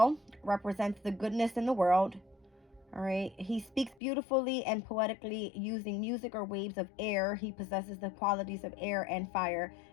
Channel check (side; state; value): right; drops out; at 4.0 s